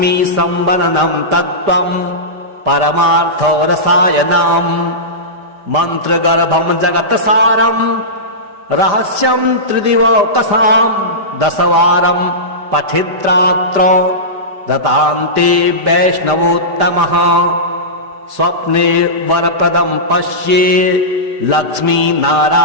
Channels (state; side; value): late; left; 5.0 ms